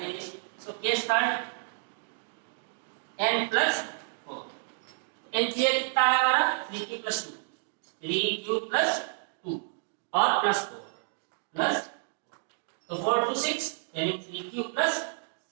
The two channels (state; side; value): silent; left; digital silence